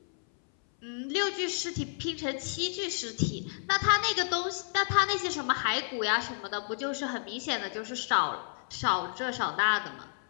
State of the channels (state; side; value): silent; right; 57 dB below the other